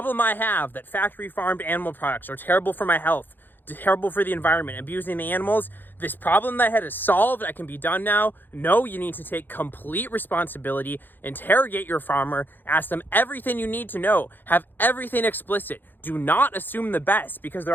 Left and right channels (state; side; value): late; right; 0.092 ms